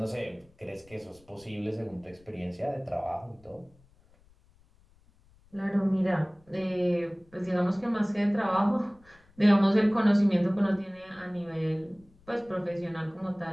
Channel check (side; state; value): left; noise; rumble, 30 dB below the sound